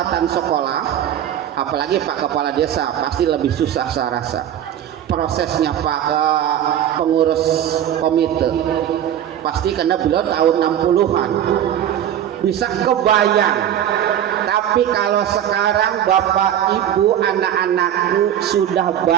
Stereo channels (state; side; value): quieter; left; 10.5 dB